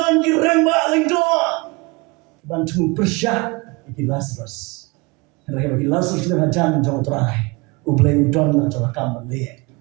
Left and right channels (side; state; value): left; quieter; 26.4 dB